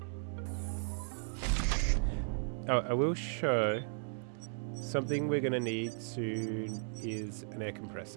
Oh, I will show something we're going to need soon is an air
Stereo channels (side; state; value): left; silent; 54 dB below the other